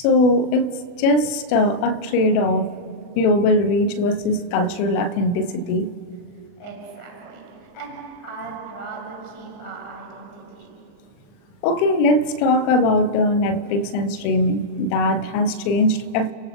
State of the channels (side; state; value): right; late; 40 ms